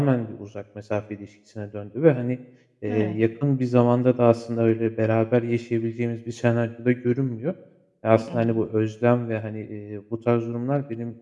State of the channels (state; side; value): identical; both; correlation 1.00